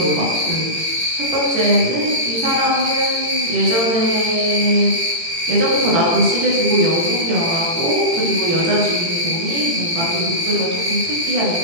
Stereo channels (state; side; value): late; left; 18 ms